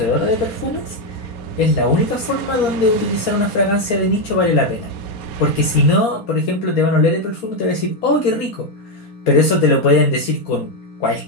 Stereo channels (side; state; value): right; late; 4.2 ms